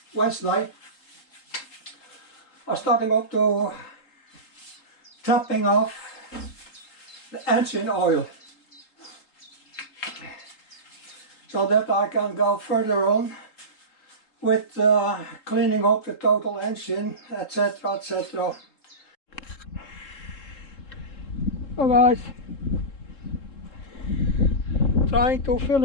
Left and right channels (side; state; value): right; late; 3.7 ms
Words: Wednesday, I'm starting up to topping off the engine oil so that I can go further on with cleaning up the total engine, etc, etc. So guys, trying to